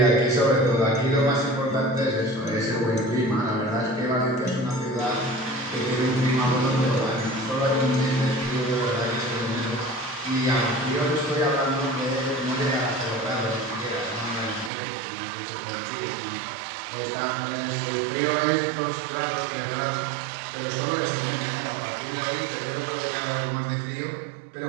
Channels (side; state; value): left; drops out; at 14.7 s